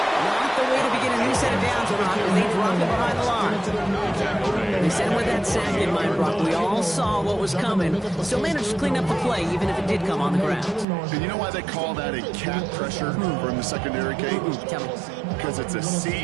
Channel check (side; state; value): left; drops out; at 10.9 s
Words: Not the way to begin a new set of downs, Brock, as they drop it behind the line. They said with that sack in mind, Brock, we all saw what was coming. Still managed to clean up the play, even if it did come on the ground. And you know why they call that a cat pressure from the secondary, Kate? Tell me. Because it's a